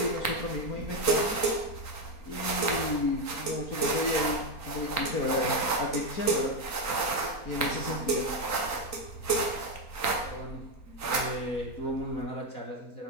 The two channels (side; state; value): right; late; 3.9 ms